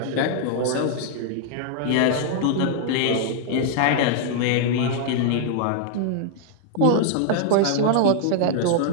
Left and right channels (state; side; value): different; both; correlation 0.00